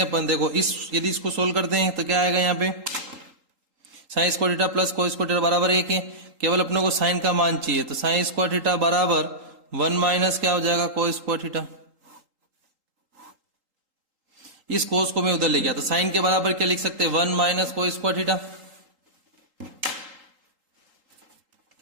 देखो इस यदि इसको सोल्व करते हैं तो क्या आएगा यहाँ पे sign square theta plus cos square theta बराबर 1 है। केवल अपने को साइन का मान चाहिए तो साइन स्क्वायर थीटा बराबर 1 माइनस क्या हो जाएगा कोस स्क्वायर थीटा। इस कोस को मैं उधर ले गया तो साइन के बराबर क्या लिख सकते हैं 1 माइनस कोस स्क्वायर थीटा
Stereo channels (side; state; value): left; late; 3.8 ms